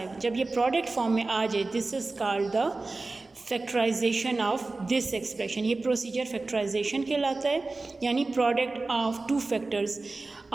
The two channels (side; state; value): left; quieter; 3.4 dB